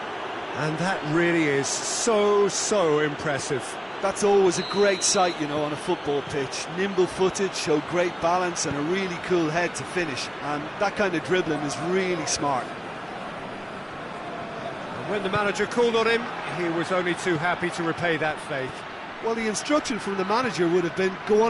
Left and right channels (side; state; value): both; identical; correlation 1.00